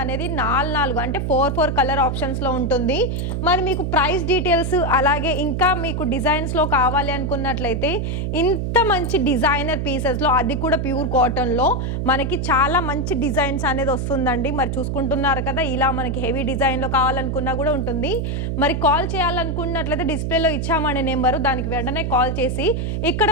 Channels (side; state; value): right; noise; hum, 1 dB below the sound